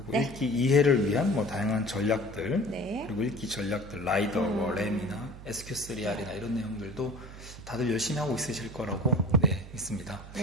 네. 읽기 이해를 위한 뭐 다양한 전략들, 네. 그리고 읽기 전략들, 라이더, 램이나 SQ3R이나 이런 내용들도 다들 열심히 하고 있으실 거라고 믿습니다.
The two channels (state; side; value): noise; right; hum, 15 dB below the sound